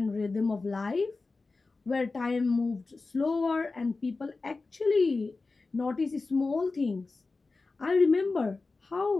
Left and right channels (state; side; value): quieter; right; 3.8 dB